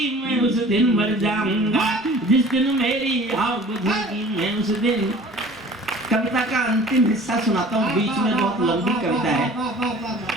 मैं उस दिन मर जाऊंगा, जिस दिन मेरी आग बुझेगी मैं उस दिन। कविता का अंतिम हिस्सा सुनाता हूँ, बीच में बहुत लंबी कविता है,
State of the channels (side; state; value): both; normal; correlation 0.46